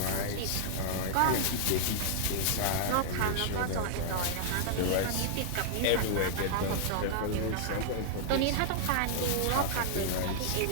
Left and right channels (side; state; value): both; different; correlation -0.01